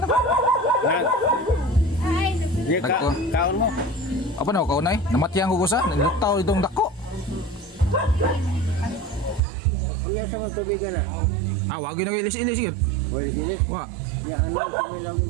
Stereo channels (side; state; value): left; drops out; at 9.4 s